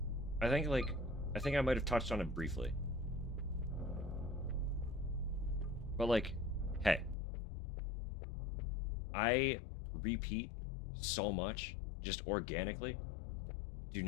I think I might have touched on it briefly. But hey, I repeat so much just organically. Do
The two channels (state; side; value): drops out; right; at 7.2 s